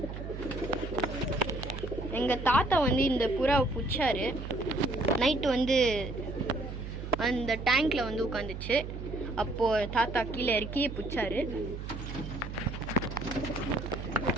எங்கள் தாத்தா வந்து இந்த புறாவை பிடிச்சாரு. நைட்டு வந்து அந்த டேங்க்கில் வந்து உட்காந்துச்சு. அப்போது தாத்தா கீழே இறக்கி பிடிச்சாரு.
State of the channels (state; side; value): noise; right; hum, 8 dB below the sound